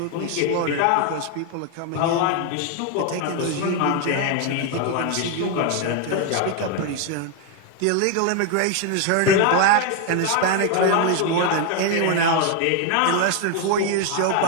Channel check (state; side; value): different; both; correlation 0.01